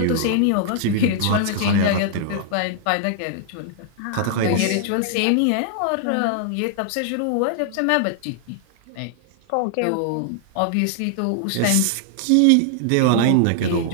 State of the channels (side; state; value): both; different; correlation 0.00